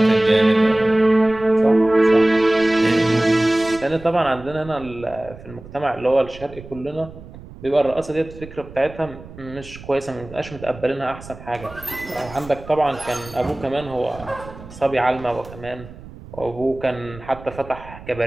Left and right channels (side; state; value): right; noise; rumble, 17 dB below the sound